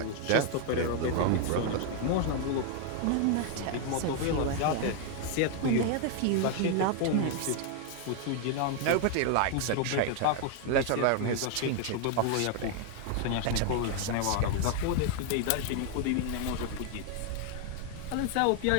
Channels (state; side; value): different; both; correlation 0.00